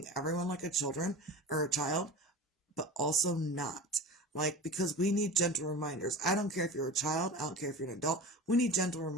everyone like a children or a child, but also not. Like, because we need gentle reminders. I don't care if you're a child. I don't care if you're an adult. We need gentle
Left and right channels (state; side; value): normal; both; correlation 0.33